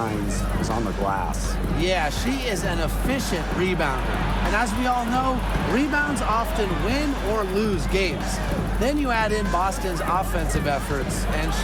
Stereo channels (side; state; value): both; identical; correlation 1.00